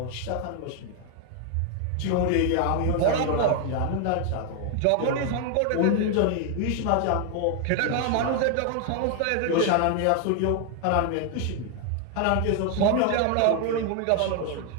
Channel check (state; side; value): different; both; correlation 0.00